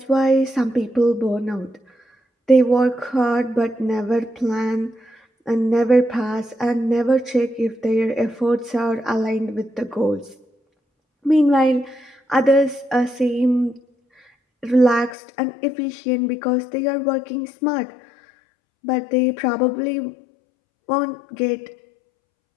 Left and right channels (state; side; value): drops out; right; at 15.2 s